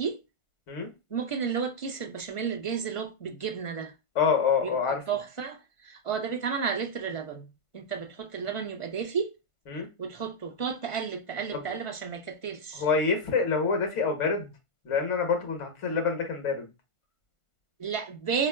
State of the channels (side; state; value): right; late; 1.5 ms